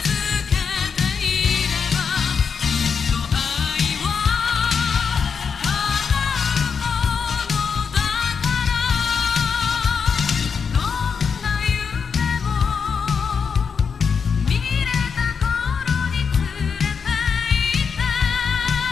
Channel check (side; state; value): right; quieter; 6.1 dB